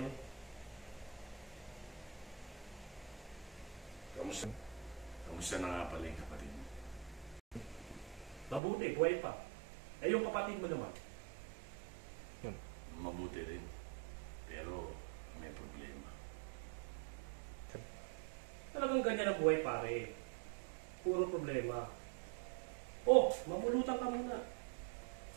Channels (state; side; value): drops out; left; at 8.6 s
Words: Kamusta na nga pala yung kapatid mo? Mabuti, buhay pa. Eh yung kapatid mo naman. Mabuti rin. Pero may problema. Talagang ganyan ang buhay pare. Puro problema. Oh, mamulutan ka muna.